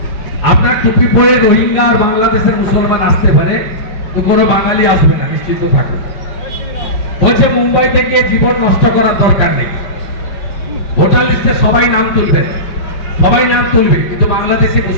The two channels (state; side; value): late; right; 5.3 ms